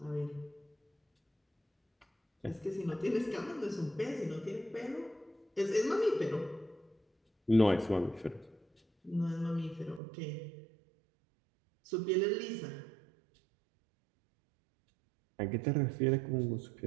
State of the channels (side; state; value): left; drops out; at 10.0 s